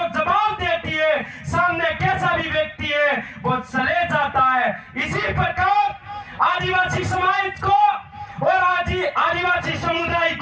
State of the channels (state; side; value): identical; both; correlation 1.00